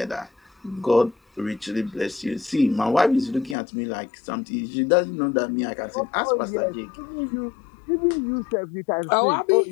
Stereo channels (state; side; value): drops out; right; at 3.6 s